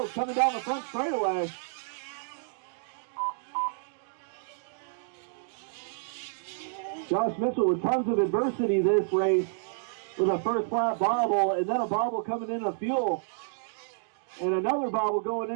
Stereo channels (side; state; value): left; silent; digital silence